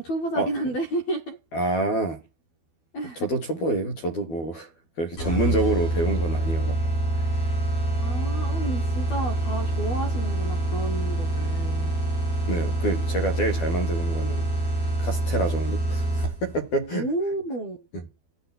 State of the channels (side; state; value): right; late; 12 ms